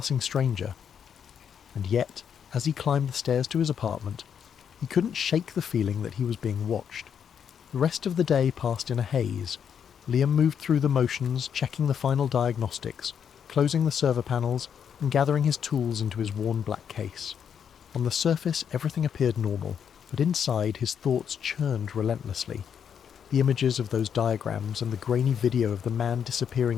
stranger. And yet, as he climbed the stairs to his apartment, He couldn't shake the feeling that he was being watched. The rest of the day passed in a haze. Liam moved through the motions, checking the final diagnostics, closing the server panels, and gathering his tools into his worn black case. On the surface, everything appeared normal, but inside his thoughts churned relentlessly. The images of those diagrams and the grainy video of the man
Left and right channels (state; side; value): quieter; right; 7.9 dB